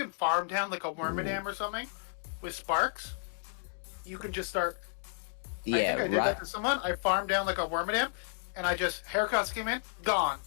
farm down like a Wormadam or something with Sparks, you can just start... Yeah, I think I did that to someone. I farmed down like a Wormadam, and I just... Haircuts came in, gone.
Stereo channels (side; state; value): right; silent; digital silence